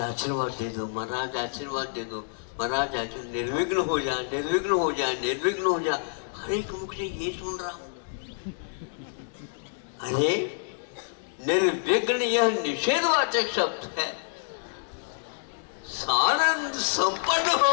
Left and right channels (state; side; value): silent; right; digital silence